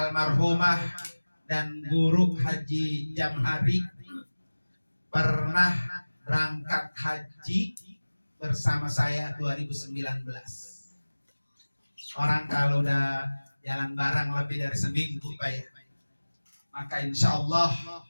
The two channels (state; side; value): inverted; both; correlation -1.00